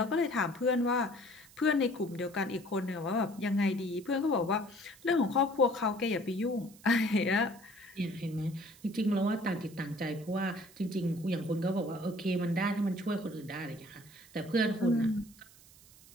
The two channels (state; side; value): noise; right; hiss, 24 dB below the sound